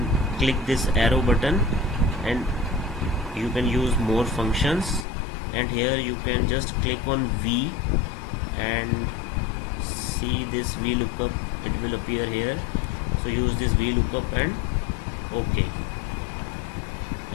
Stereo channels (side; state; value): right; drops out; at 5.1 s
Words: click this arrow button and you can use more functions, and here you can just click on V and see this VLOOKUP, it will appear here. So use this VLOOKUP and OK.